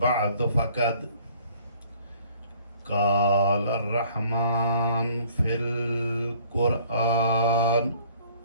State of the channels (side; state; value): both; inverted; correlation -0.57